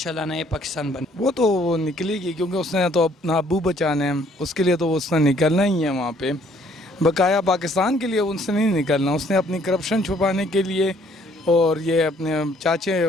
नए पाकिस्तान बन। वो तो निकलेगी, क्योंकि उसने तो अपना अबू बचाना है, उसके लिए तो उसने निकलना ही है वहाँ पे। बकाया पाकिस्तान के लिए उसने नहीं निकलना, उसने अपनी करप्शन छुपाने के लिए और ये अपने चाचे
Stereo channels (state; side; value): normal; both; correlation 0.62